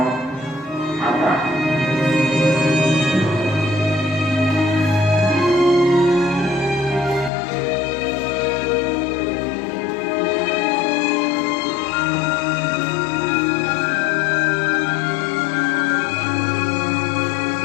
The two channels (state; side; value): drops out; right; at 7.3 s